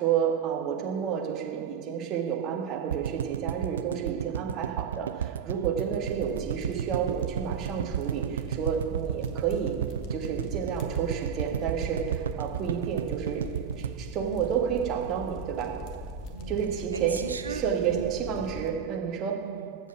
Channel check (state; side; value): quieter; left; 7.4 dB